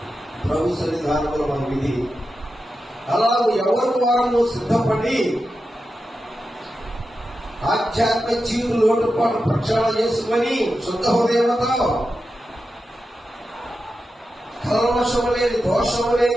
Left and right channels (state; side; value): normal; both; correlation 0.90